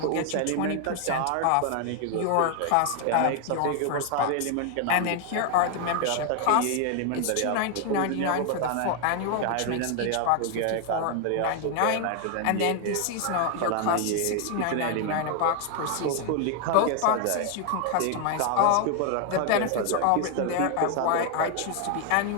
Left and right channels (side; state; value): both; different; correlation 0.00